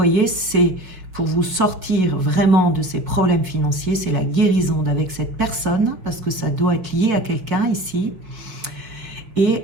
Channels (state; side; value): late; left; 5.6 ms